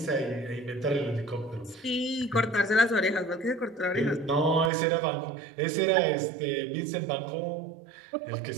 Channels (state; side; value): drops out; left; at 4.7 s